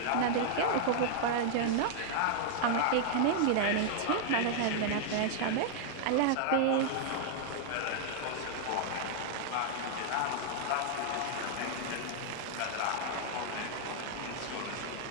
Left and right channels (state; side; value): different; both; correlation -0.01